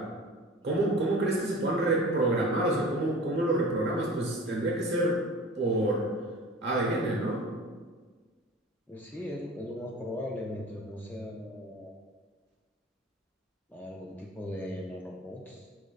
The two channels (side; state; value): both; normal; correlation 0.39